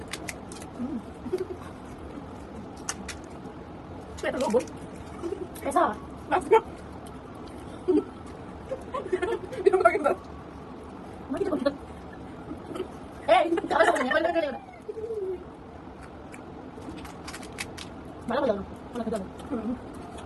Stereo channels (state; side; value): identical; both; correlation 1.00